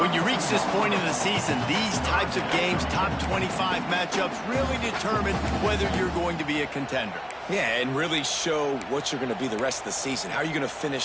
When you reach this point in the season, these types of games, top 25 matchups, really determine whether you're going to be a contender. Yeah, and really show what you're going to be the rest of the season. How are you going to finish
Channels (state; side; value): identical; both; correlation 1.00